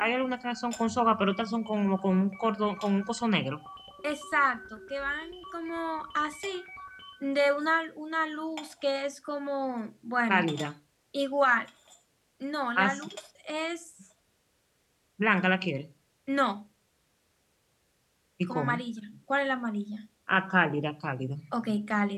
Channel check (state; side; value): identical; both; correlation 1.00